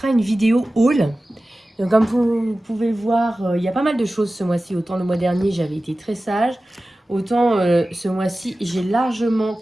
une vidéo haul. Donc, comme vous pouvez voir, il y a pas mal de choses ce mois-ci. Autant le mois dernier j'avais été très sage, autant ce mois-ci j'ai largement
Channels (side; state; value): both; normal; correlation 0.96